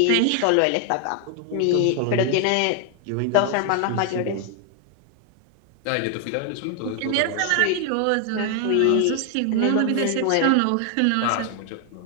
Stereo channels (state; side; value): different; both; correlation 0.00